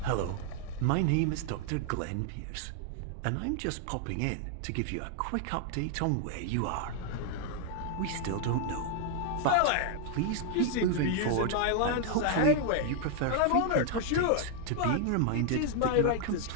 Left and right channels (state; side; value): different; both; correlation 0.00